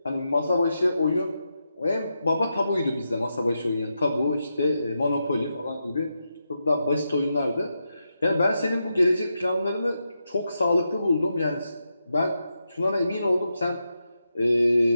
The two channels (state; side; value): inverted; both; correlation -0.86